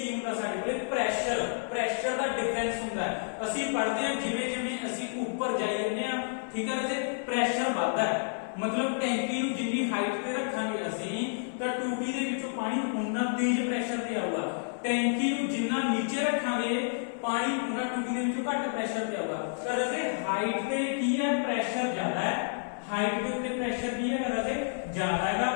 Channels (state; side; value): silent; right; 58 dB below the other